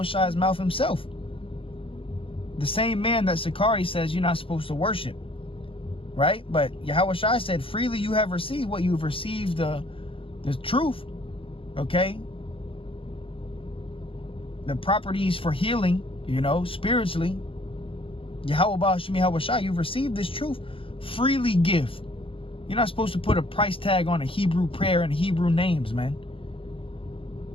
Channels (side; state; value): right; late; 0.26 ms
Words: mouth himself. The same man that Sicarii says you're not supposed to worship. Right? But Yahushua said, freely you have received what you've received, the truth. Okay? The properties for healing, spiritually. Yahweh Bashem Yahushua, you've received this truth. Freely give. You're not supposed to put a price tag on a Hebrew prayer and Hebrew names, man.